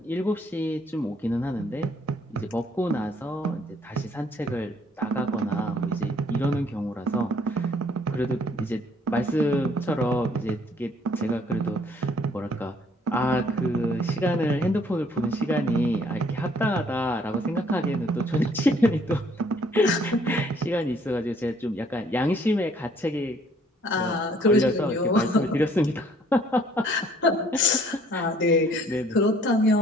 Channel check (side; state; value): both; normal; correlation 0.61